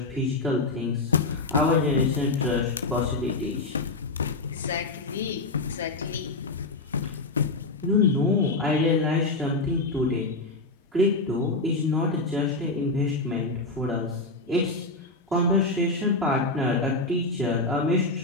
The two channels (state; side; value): quieter; right; 3.3 dB